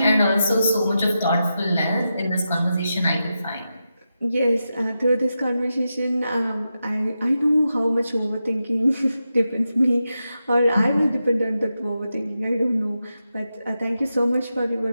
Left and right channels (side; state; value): both; inverted; correlation -0.88